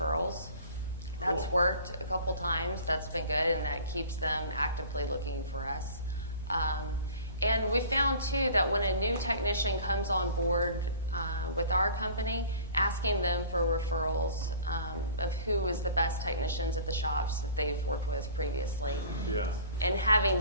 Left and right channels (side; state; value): both; inverted; correlation -0.44